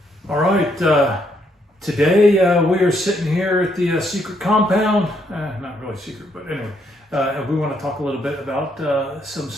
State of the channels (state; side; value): normal; both; correlation 0.73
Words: All right. Today we are sitting here at the secret compound. Not really secret, but anyway. We want to talk a little bit about some